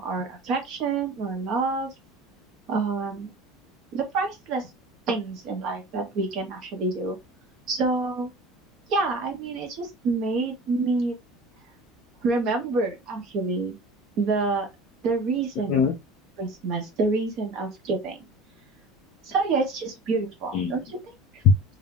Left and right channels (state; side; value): normal; both; correlation 0.38